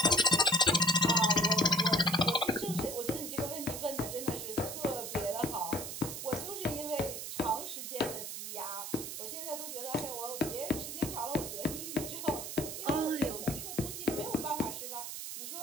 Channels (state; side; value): noise; right; hiss, 6 dB below the sound